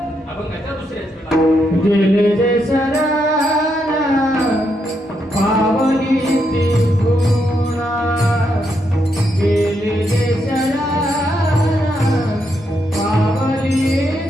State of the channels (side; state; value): both; normal; correlation 0.79